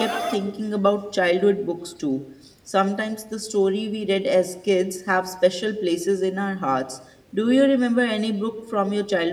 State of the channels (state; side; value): identical; both; correlation 1.00